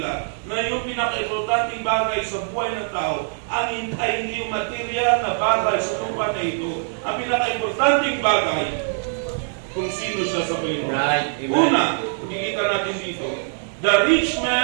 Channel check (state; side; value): silent; left; digital silence